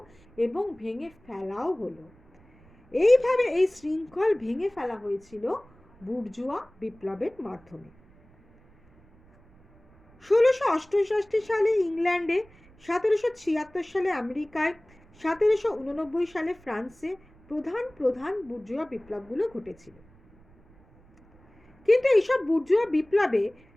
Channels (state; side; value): noise; right; rumble, 28 dB below the sound